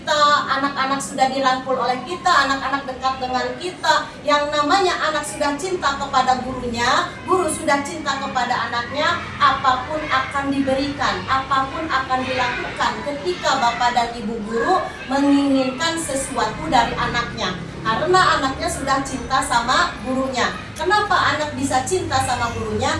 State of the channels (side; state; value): both; identical; correlation 1.00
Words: anak-anak sudah dirangkul oleh kita, anak-anak dekat dengan kita, yang namanya anak sudah cinta kepada gurunya, guru sudah cinta kepada anaknya, apapun akan diberikan, apapun akan dilakukan ketika Bapak dan Ibu guru menginginkan sesuatu dari anaknya. Karena anaknya sudah cinta sama gurunya. Kenapa anak bisa cinta sama